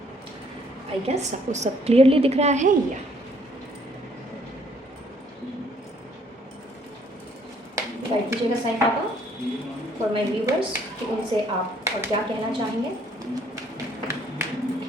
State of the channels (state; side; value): normal; both; correlation 0.64